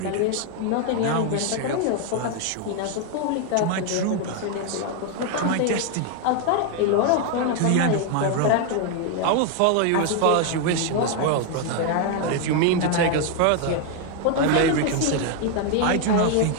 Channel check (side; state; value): both; different; correlation 0.01